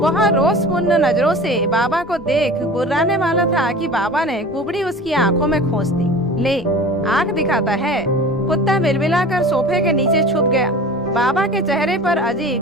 रोषपूर्ण नजरों से बाबा को देख गुर्राने वाला था कि बाबा ने कुबड़ी उसकी आंखों में खोस दी। ले, आंख दिखाता है। कुत्ता बिलबिलाकर सोफे के नीचे छुप गया। बाबा के चेहरे पर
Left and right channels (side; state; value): both; normal; correlation 0.39